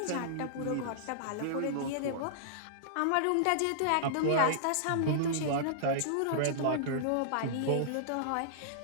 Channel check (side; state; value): both; different; correlation -0.02